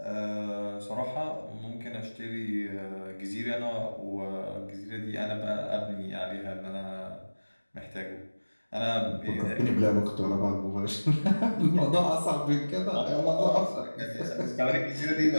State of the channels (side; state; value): both; inverted; correlation -1.00